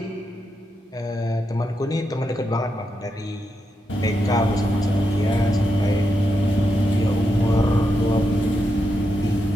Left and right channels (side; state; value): both; normal; correlation 0.85